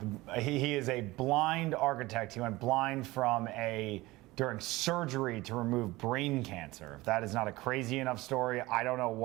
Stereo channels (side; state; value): left; quieter; 19.9 dB